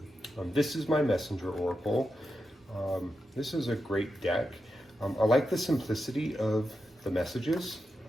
This is my Messenger Oracle. This is a great deck. I like the simplicity of the messages.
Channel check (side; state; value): both; normal; correlation 0.88